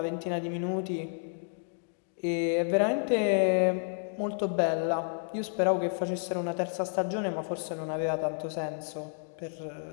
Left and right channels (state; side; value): silent; right; digital silence